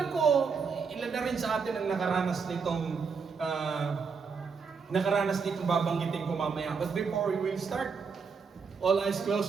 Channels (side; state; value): left; quieter; 5.4 dB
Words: ko, ilan na rin sa atin ang nakaranas nitong babanggitin ko mamaya. But before we will start, all eyes